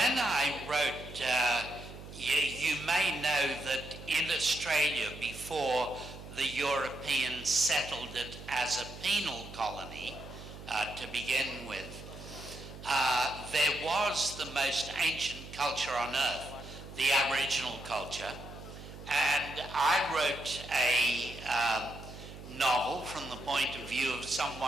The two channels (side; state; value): right; noise; hum, 14 dB below the sound